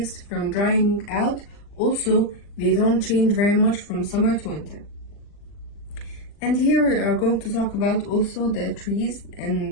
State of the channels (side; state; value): right; late; 39 ms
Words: from drying out. Also, they don't change very much from summer to winter. And here we are going to talk about also the trees